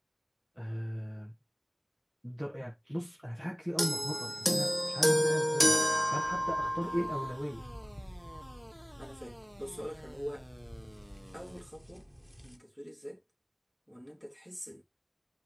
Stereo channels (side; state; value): both; identical; correlation 1.00